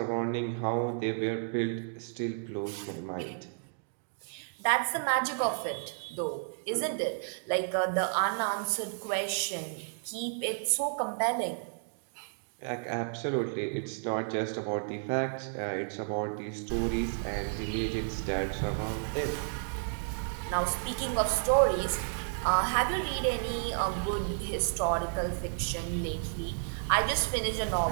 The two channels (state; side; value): silent; left; digital silence